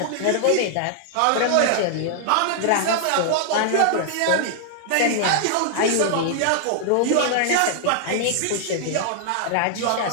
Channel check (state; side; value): different; both; correlation -0.01